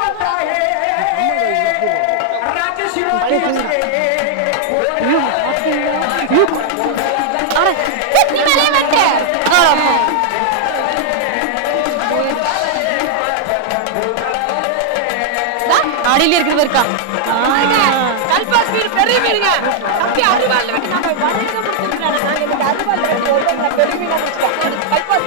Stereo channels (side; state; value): both; different; correlation -0.01